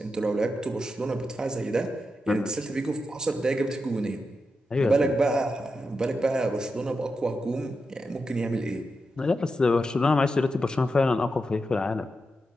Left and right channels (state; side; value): normal; both; correlation 0.88